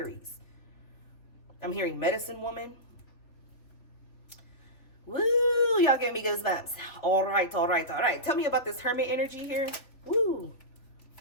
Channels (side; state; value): right; late; 3.4 ms